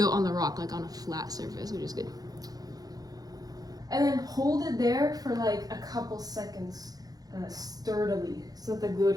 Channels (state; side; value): late; left; 0.18 ms